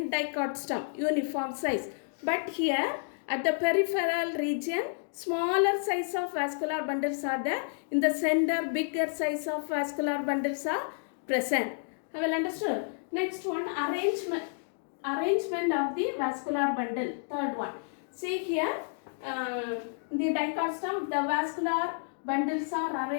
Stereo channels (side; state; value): right; silent; digital silence